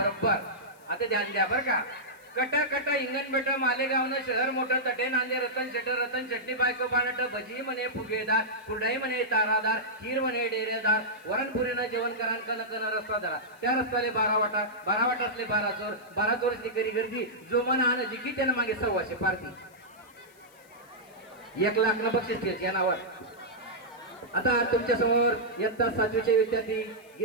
आता ध्यान द्या बरं का. कट कट इंगण बेट मालेगावनं शहर मोठं तटे नांदे रतन शेटर रतन चटणी बायको बाणट भजी म्हणे फुगेदार कुरडाई म्हणे तारादार खीर म्हणे डेरेदार वरणपुरीनं जेवण करा कन कन रस्ता धरा त्या रस्त्याले 12 वाटा 12 वाटा असले 12 चोरसनी करी गर्दी जो मन आण जिकी त्यानं मागे 100 पारती 1 लाख न बक्षीस द्यायचे या नावावर. आता तुमच्या समोर इयत्ता 7वीचे विद्यार्थी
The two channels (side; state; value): left; noise; hiss, 29 dB below the sound